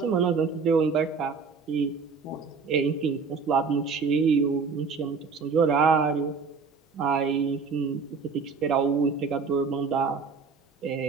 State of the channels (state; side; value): quieter; left; 5.1 dB